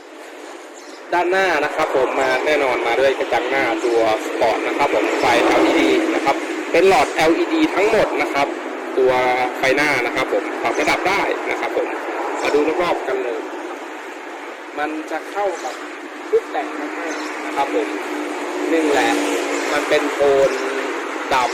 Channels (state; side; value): identical; both; correlation 1.00